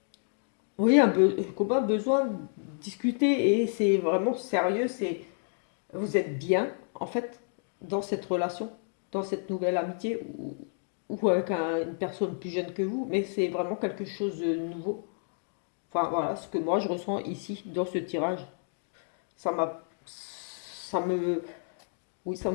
oui comme un besoin de discuter et c'est vraiment sérieux. C'est vous êtes bien, en fait, dans cette relation, dans cette nouvelle amitié, ou avec une personne plus jeune que vous, mais c'est vraiment quelque chose de nouveau. Enfin, voilà, ce que moi je ressens ici, dans ce tirage. Ça m'a. Ça me. Oui,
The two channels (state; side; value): silent; right; digital silence